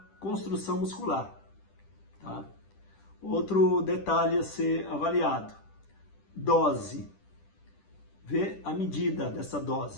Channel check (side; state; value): right; late; 10 ms